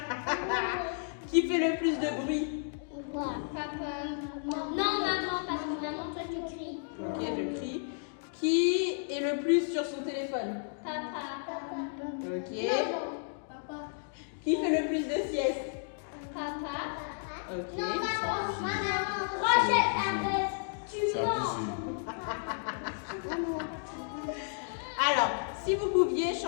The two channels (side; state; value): right; silent; digital silence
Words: Qui fait le plus de bruit? Papa. Non, maman, parce que maman, toi, tu cries. Ok, je crie. Qui est le plus sur son téléphone? Papa. Ok. Papa. Qui fait le plus de siestes? Papa. Ok. Rochelle, arrête. Tu C'est mens. abusé. Alors, si vous pouviez